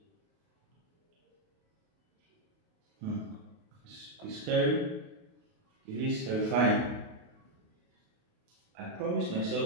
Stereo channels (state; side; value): late; left; 28 ms